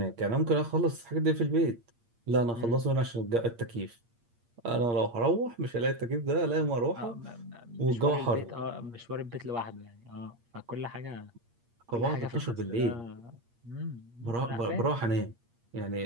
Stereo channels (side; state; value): left; late; 8.6 ms